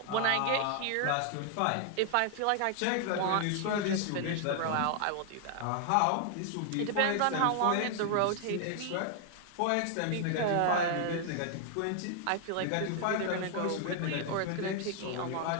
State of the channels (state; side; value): different; both; correlation 0.00